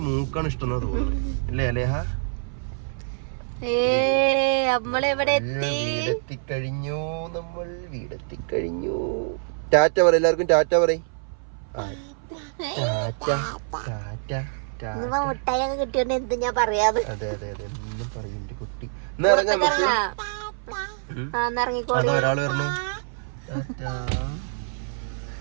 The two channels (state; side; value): silent; left; 57 dB below the other